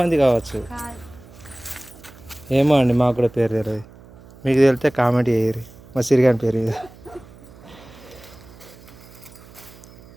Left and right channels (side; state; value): right; noise; hum, 22 dB below the sound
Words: కావచ్చు. ఏమో అండి, మాకు కూడా పేరు తెలియదు. మీకు తెలితే కామెంట్ చేయరు. మా సిరిగాని పేరు ఇది.